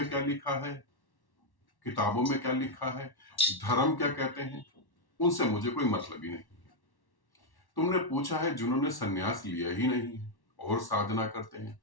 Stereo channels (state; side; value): late; right; 1.1 ms